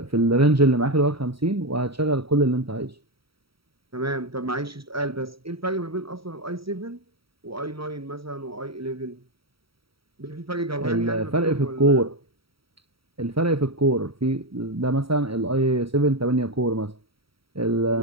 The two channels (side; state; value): left; late; 0.75 ms